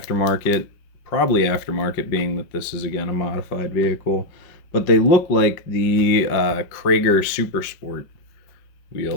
Probably aftermarket, being that this is, again, a modified vehicle. But they look like the Krager Super Sport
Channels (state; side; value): late; right; 5.6 ms